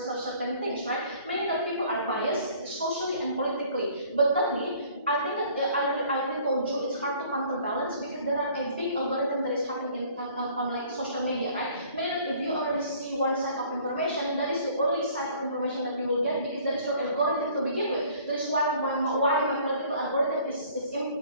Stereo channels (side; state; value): both; inverted; correlation -0.54